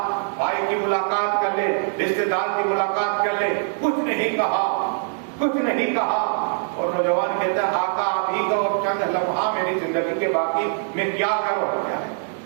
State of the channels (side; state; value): left; silent; 61 dB below the other